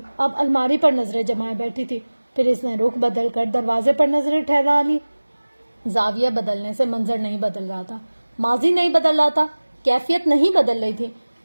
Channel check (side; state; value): both; inverted; correlation -1.00